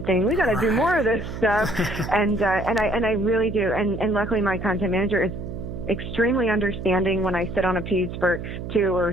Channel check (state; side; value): noise; right; hum, 8 dB below the sound